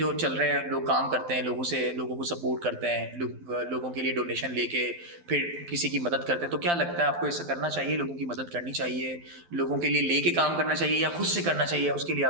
चल रहे हैं, लोग काम करते हैं, लोगों को सपोर्ट करते हैं, लोगों के लिए डोनेशन लेके फिर किसी की मदद करते हैं, तो क्या लगता है आपको ऐसा करना चाहिए? लोगों की मदद करनी चाहिए, लोगों के लिए लेके काम करना चाहिए, या खुद से करना चाहिए? उसके लिए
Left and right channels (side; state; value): left; late; 12 ms